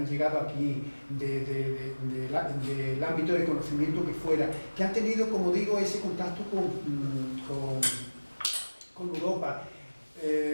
llegado aquí, del ámbito de conocimiento que fuera, que han tenido, como digo, ese contacto con Europa.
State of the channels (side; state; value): both; inverted; correlation -1.00